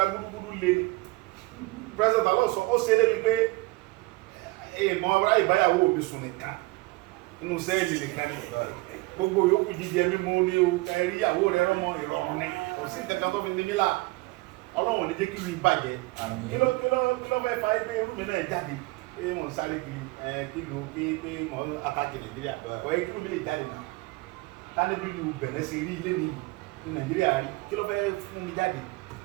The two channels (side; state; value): left; quieter; 22.7 dB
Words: gbúdúgbúdú lé president Talon sọ ó ṣe é débi pé èèmọ̀ ọ̀rá ìbáyàwó mi sùn nìkan nínú sẹ́ẹ̀lì nìkan ni gbogbo yòókù jíjẹ mímú ní o ẹ̀rí ìyàwó rẹ̀ rọ́mọ ìrọ̀rùn ni kò sí ìtẹ̀kàn tó fi ní mílà Ọlọ́run ní jẹ́ kí mi bàjẹ́ kí ló fẹ́ fa ẹgbẹ́ irú mi náà jáde pé wọ́n sáré kí ló pé mọ́ àtàkì Nàìjíríà kọ́ ẹ kí ló lè jáde nà tani bí lu Bẹ̀nẹ̀ ṣe rí ilé ní Nàìjíríà rí kí ló fẹ́ fún mi jáde.